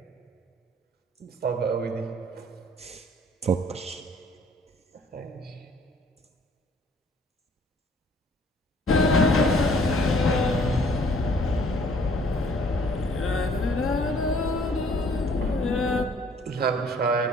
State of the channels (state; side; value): normal; both; correlation 0.58